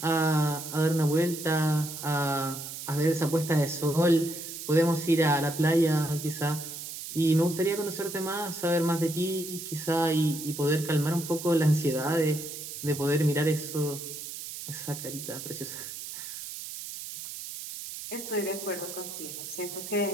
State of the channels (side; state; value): right; noise; hiss, 9 dB below the sound